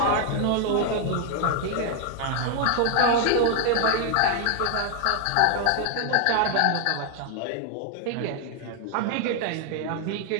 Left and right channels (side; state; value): both; different; correlation 0.00